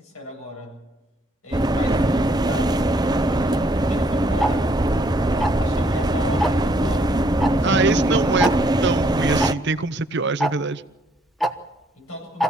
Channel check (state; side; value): normal; both; correlation 0.68